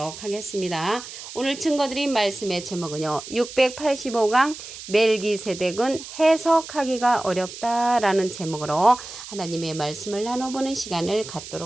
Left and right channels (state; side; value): noise; right; hiss, 12 dB below the sound